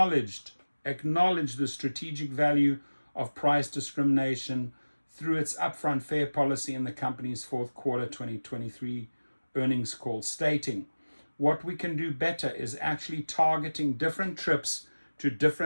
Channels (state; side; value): inverted; both; correlation -1.00